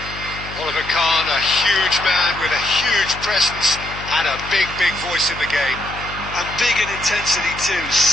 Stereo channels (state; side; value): noise; left; hum, 13 dB below the sound